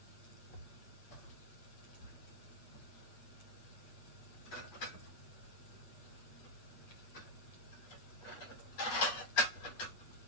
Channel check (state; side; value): late; right; 8.4 ms